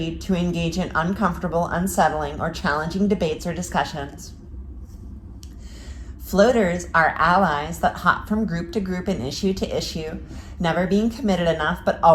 to engage in uncomfortable, unsettling, or challenging debates or discussions. Floaters are allies that hop from group to group and issue to issue, never being committed enough but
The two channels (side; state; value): both; identical; correlation 1.00